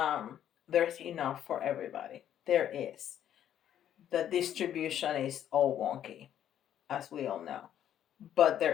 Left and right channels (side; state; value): right; quieter; 10.5 dB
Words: enough for everybody. There is. The distribution is all wonky, as we all know, but